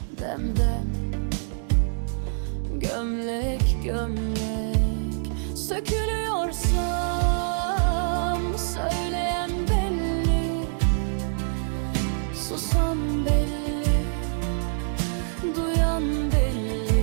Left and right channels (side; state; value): left; silent; digital silence